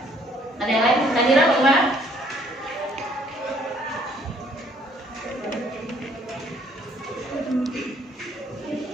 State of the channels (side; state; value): both; normal; correlation 0.63